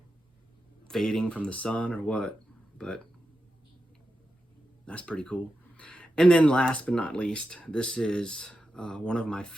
fading from the sun or what, but that's pretty cool. And then last but not least, this is one of my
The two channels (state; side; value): normal; both; correlation 0.89